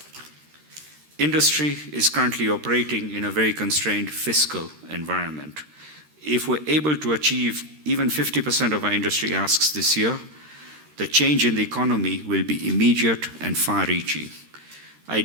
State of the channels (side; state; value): left; late; 13 ms